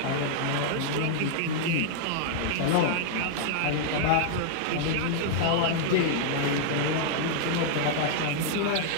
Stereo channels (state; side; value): different; both; correlation -0.01